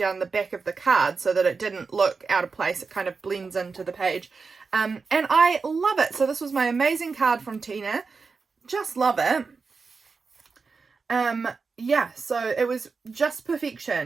the back of the card so that it didn't look out of place. It kind of blends into the page. And I love it. So this was my amazing card from Tina. Just love it. Yeah, so it was just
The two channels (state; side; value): quieter; left; 4.7 dB